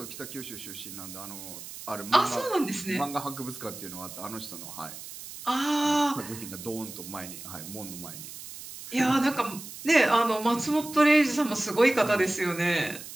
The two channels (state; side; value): noise; right; hiss, 12 dB below the sound